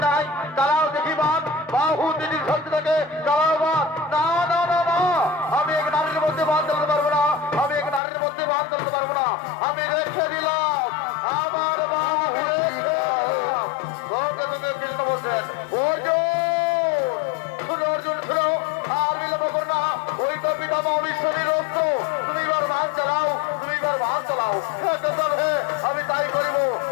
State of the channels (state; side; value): drops out; right; at 8.0 s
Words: নাই তারাও দেখি বাদ বাহু তিনি শক্তি থেকে তারাও বাদ না না না না আমি এক নারীর মধ্যে বাদ দিতে পারবো না আমি এক নারীর মধ্যে বাদ দিতে পারবো না আমি রেখে দিলাম আমার অবিশ্বাসী রক্ত তুমি এবার ভাগ চালাও, তুমি এবার ভাগ চালাও। হ্যাঁ কেশব, হ্যাঁ আমি তাই করিব,